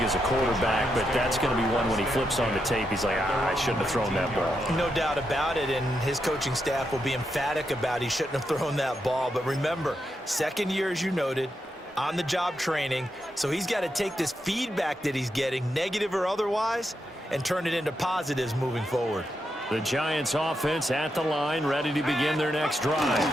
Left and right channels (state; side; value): normal; both; correlation 0.84